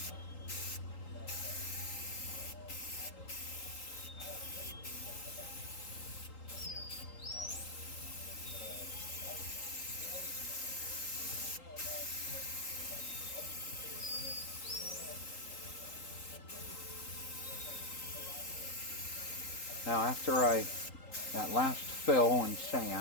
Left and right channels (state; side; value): late; right; 3.8 ms